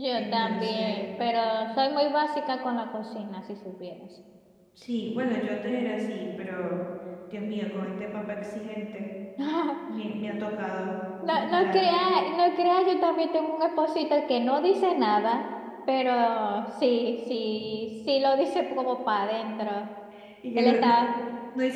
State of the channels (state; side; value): identical; both; correlation 1.00